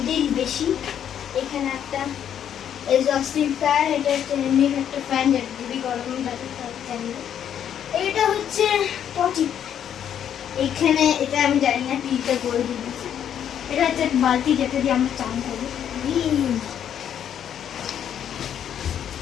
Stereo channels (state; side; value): quieter; right; 9.4 dB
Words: বেশি। এখানে একটা এক্সস্টিং ফ্যান। এটা হচ্ছে এমনি একটা ফ্যান যেটা যদি গরম লাগে তাহলে চালিয়ে। এটা হচ্ছে পটি। এখানে এটা আমি জানি না টিটা করে দিয়েছি। এটা হচ্ছে বালতি যেটা দিয়ে আমরা চান করি।